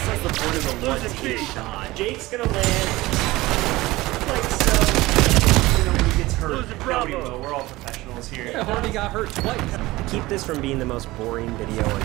that's the point of the one-team shot. Jake's gonna land like so. You know, when he gets hurt. No, we will. We're all professionals here. Yeah, Hardy got hurt twice. To keep this from being the most boring video on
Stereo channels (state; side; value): quieter; left; 19.3 dB